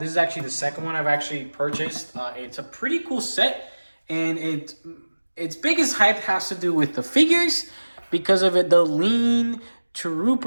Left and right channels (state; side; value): inverted; both; correlation -1.00